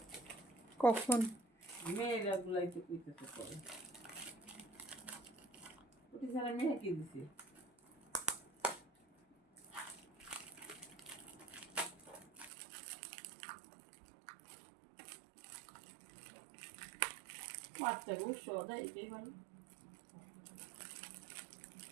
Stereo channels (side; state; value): left; drops out; at 12.5 s